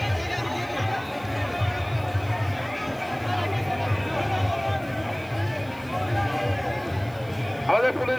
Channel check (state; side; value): noise; right; hiss, 25 dB below the sound